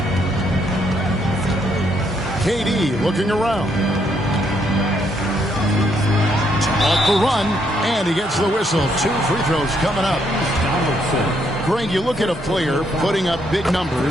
KD looking around. Off the run, and he gets the whistle. 2 free throws coming up. Greg, you look at a player putting up big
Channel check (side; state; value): both; normal; correlation 0.73